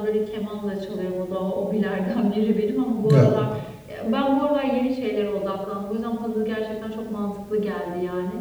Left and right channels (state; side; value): identical; both; correlation 1.00